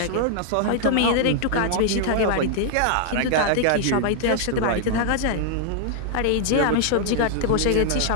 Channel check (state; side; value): different; both; correlation -0.01